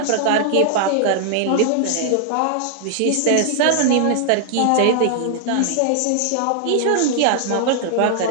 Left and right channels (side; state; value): both; different; correlation -0.01